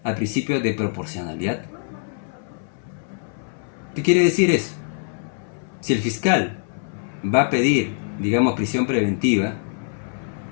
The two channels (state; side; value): silent; right; 59 dB below the other